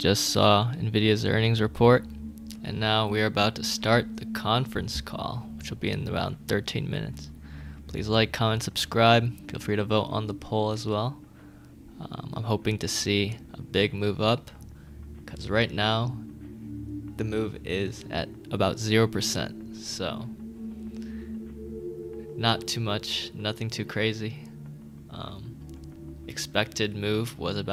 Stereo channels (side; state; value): both; identical; correlation 1.00